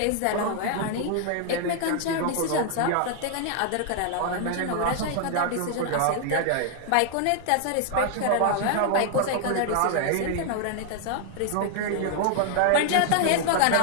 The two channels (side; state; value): both; different; correlation 0.00